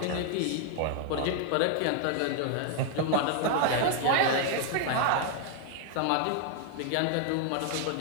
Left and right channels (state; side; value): different; both; correlation 0.00